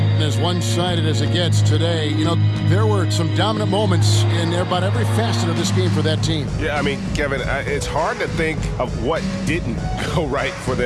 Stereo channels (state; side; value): identical; both; correlation 1.00